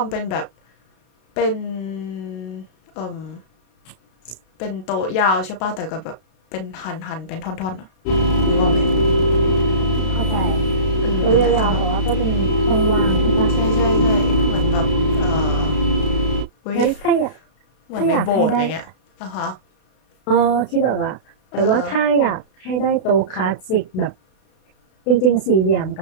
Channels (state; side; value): late; right; 32 ms